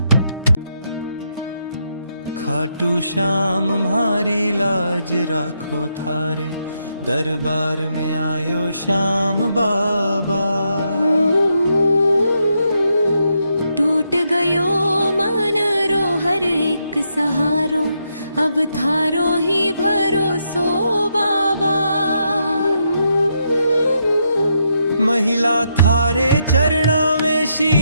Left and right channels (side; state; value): both; inverted; correlation -0.80